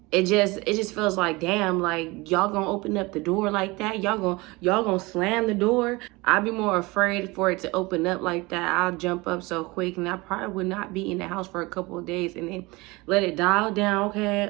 it just feels like, damn, like y'all gonna open up the door like that? Y'all gonna slam the door? I'd be more afraid for it to open up like that. I'll jump up so quick, and I probably would not be in the house for a couple of days and then let it dial down. Okay,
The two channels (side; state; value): left; quieter; 23.4 dB